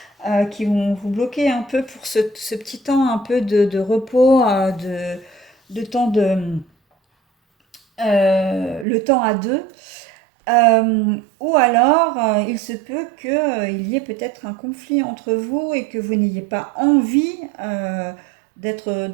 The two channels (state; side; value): drops out; left; at 8.8 s